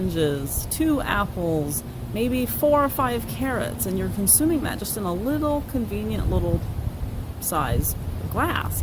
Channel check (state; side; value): identical; both; correlation 1.00